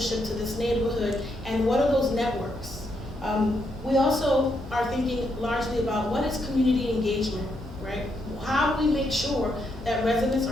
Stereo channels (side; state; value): both; normal; correlation 0.78